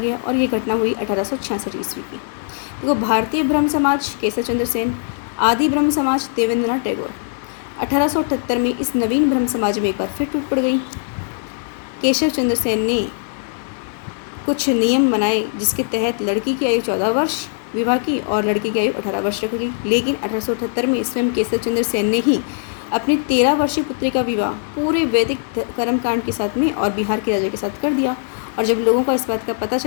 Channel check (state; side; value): silent; right; 61 dB below the other